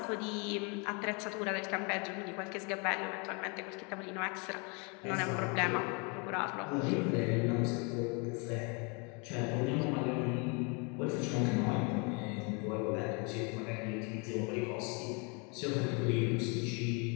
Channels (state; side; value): quieter; right; 33.0 dB